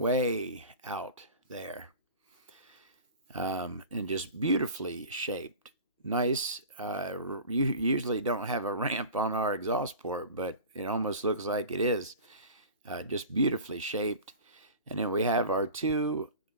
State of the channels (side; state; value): both; inverted; correlation -0.36